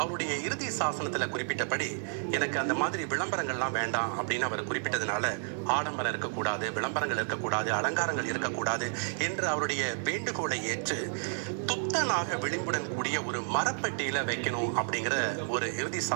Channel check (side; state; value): left; silent; 57 dB below the other